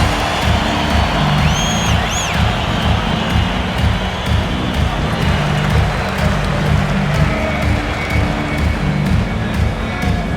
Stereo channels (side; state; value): both; identical; correlation 1.00